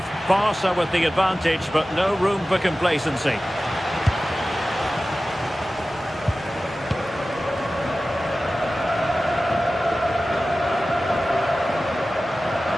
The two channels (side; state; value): both; normal; correlation 0.96